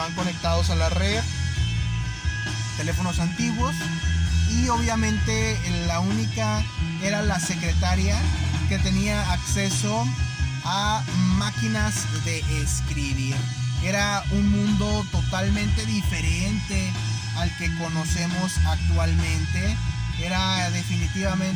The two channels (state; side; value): identical; both; correlation 1.00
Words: conectados a la red, teléfonos antiguos, y obviamente la única era la secretaria que tenía acceso a máquinas de escribir. Era un mundo totalmente diferente al que conocemos actualmente. Era